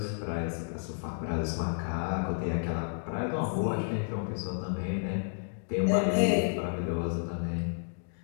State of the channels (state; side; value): silent; right; digital silence